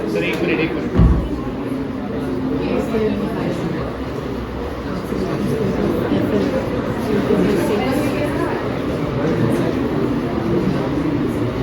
सर एक मिनट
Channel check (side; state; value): both; identical; correlation 1.00